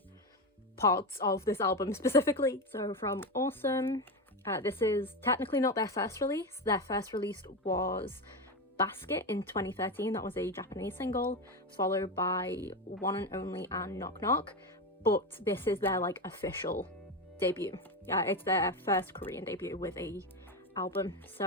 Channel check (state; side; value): normal; both; correlation 0.15